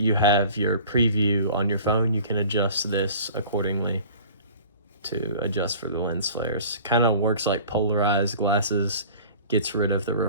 have your preview on your phone, you can adjust this accordingly to adjust for the lens flares. Kind of works like polarized glasses, gets rid of the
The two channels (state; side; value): inverted; both; correlation -0.44